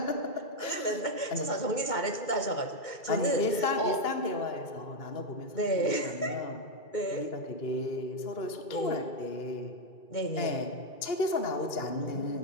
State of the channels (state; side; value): late; right; 2.3 ms